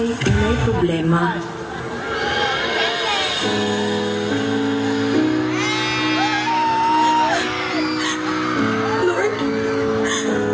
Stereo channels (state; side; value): identical; both; correlation 1.00